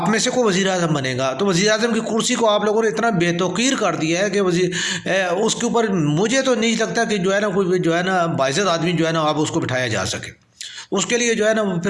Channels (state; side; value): identical; both; correlation 1.00